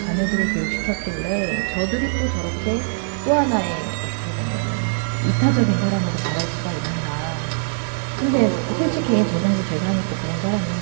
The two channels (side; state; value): left; silent; digital silence